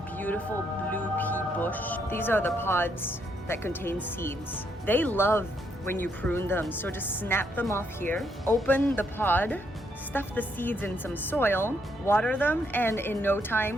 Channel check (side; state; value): both; normal; correlation 0.75